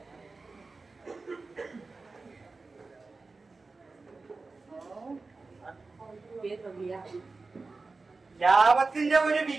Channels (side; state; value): left; quieter; 3.8 dB